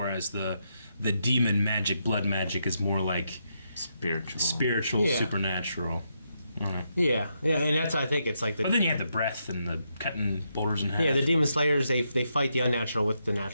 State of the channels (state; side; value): inverted; both; correlation -0.81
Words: the demon magic, blood magic, is more like spiritual, Yeah. supernatural. Yeah, and that's I think it's like But the then you have the breath and the cutting boulders in half. the demon slayers they fight the unnatural with the